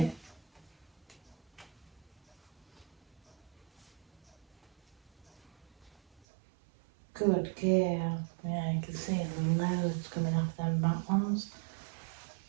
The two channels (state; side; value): drops out; left; at 6.2 s